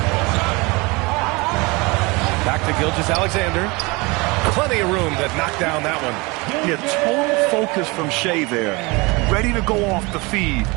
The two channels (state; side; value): quieter; left; 25.6 dB